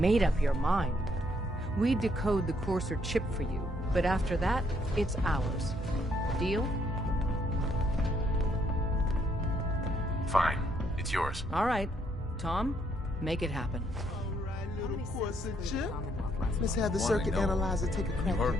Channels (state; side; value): normal; both; correlation 0.71